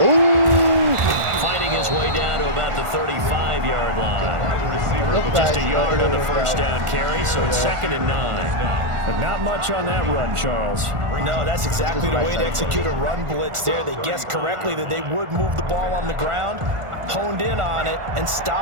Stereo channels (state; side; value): late; left; 1.4 ms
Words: Ooh! Fighting his way down to about the 35-yard line. Wide receiver over the Just a yard on the first down carry, so it's 2nd and 9. But not much on that run, Charles. No, that's exactly the way to execute a run blitz there. They guessed correctly that they would move the ball on the ground, honed in on it, and